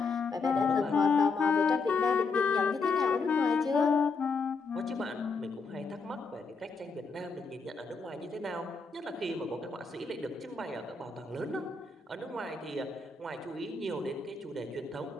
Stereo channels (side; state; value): right; quieter; 4.3 dB